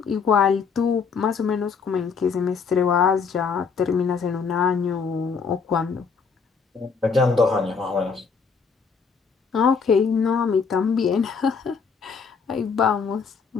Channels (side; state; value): right; quieter; 5.6 dB